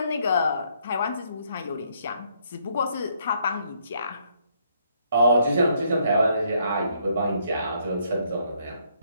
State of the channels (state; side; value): inverted; both; correlation -0.70